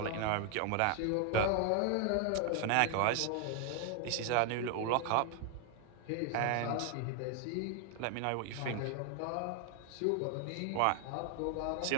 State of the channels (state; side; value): different; both; correlation 0.00